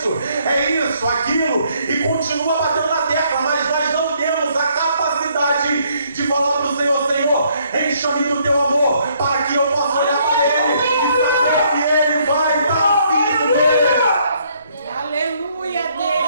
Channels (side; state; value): both; inverted; correlation -0.68